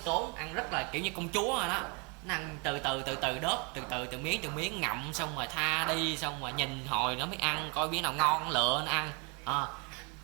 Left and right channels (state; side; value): quieter; left; 32.7 dB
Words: ăn rất là kiểu như công chúa rồi đó. Nó ăn từ từ đớp, từ miếng ngậm, xong rồi tha đi, xong rồi nhìn hồi nó mới ăn, coi miếng nào ngon lựa nó ăn.